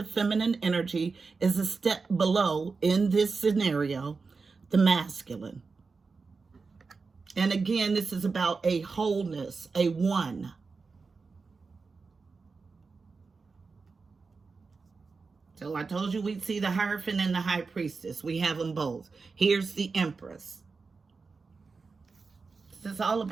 feminine energy is a step below, in this scenario, the masculine. And again, this is about a wholeness, a one. So I told you we'd see the Hierophant and the High Priestess. We have them both. Here's the Empress. This is all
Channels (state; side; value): quieter; left; 4.5 dB